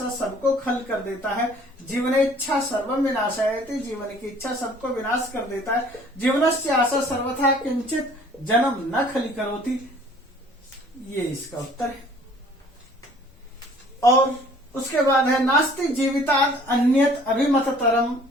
सबको खल कर देता है। जीवन इच्छा सर्वम विनाशायति, जीवन की इच्छा सबको विनाश कर देता है। जीवनस्य आशा सर्वथा किंचित जन्म न खली करोति, ये इसका उत्तर है। और उसके बाद है नास्ति जीवितात् अन्यत अभिमततरम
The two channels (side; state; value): both; normal; correlation 0.54